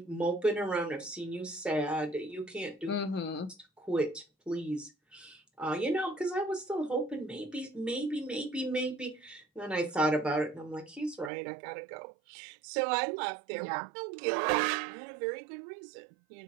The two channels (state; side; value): drops out; left; at 11.3 s